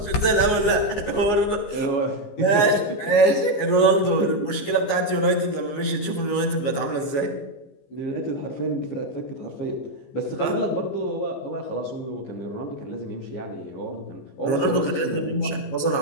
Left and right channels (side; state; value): right; late; 15 ms